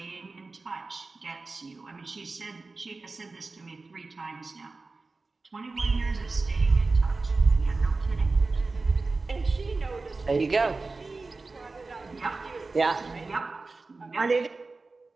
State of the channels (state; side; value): quieter; left; 3.7 dB